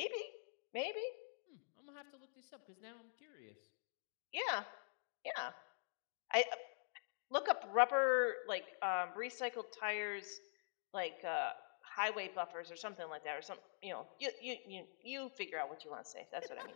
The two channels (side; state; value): right; silent; digital silence